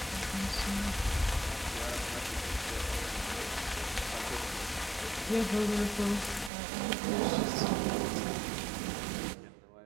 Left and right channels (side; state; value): left; drops out; at 6.5 s